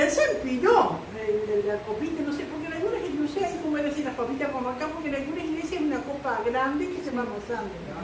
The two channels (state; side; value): identical; both; correlation 1.00